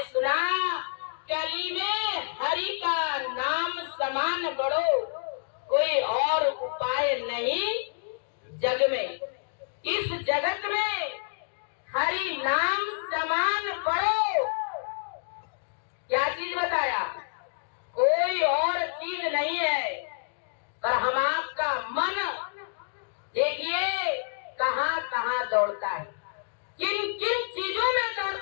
सुना, कली में हरि का नाम समान बड़ो, कोई और उपाय नहीं जग में। इस जगत में हरि नाम समान पढ़ो। क्या चीज बताया? कोई और चीज नहीं है। पर हम आपका मन देखिए कहाँ कहाँ दौड़ता है, किन किन चीजों में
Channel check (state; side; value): silent; right; digital silence